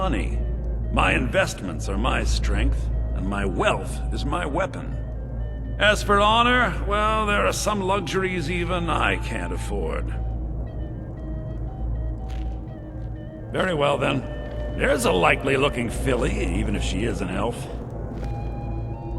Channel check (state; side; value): identical; both; correlation 1.00